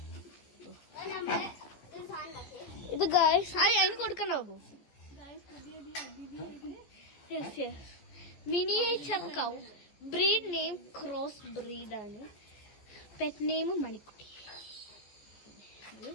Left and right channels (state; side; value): late; right; 15 ms